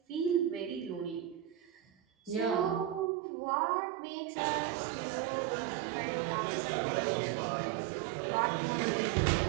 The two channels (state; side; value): drops out; left; at 3.1 s